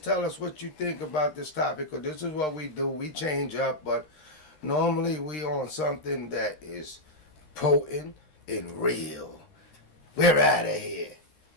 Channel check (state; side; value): late; right; 13 ms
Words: tell us what you think about this topic, because this is what we do. We change up, but normally we on something that is potent and real. We're out of here.